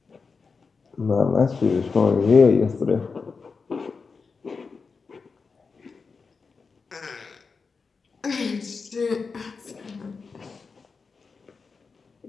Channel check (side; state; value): right; quieter; 4.8 dB